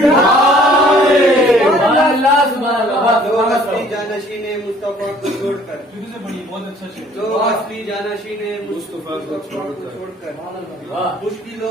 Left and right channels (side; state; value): both; normal; correlation 0.56